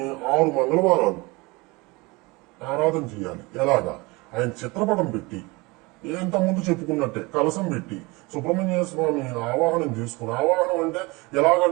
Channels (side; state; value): left; quieter; 24.7 dB